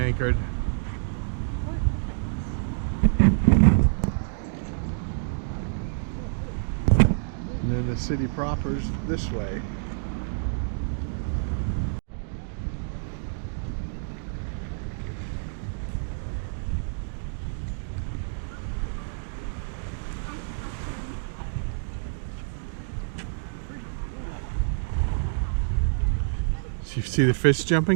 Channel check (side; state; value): left; silent; digital silence